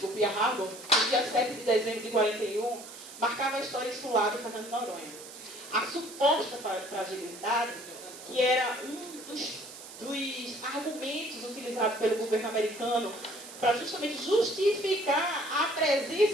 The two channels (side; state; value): right; noise; hiss, 15 dB below the sound